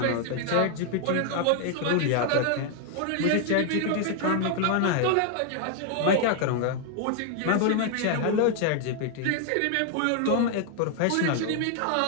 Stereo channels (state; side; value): different; both; correlation 0.00